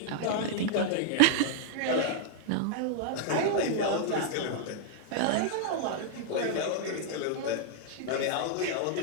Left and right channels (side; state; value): both; different; correlation -0.01